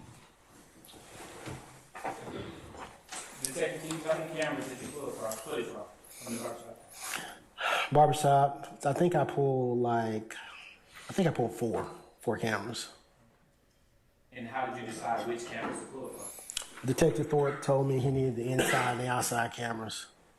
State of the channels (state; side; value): identical; both; correlation 1.00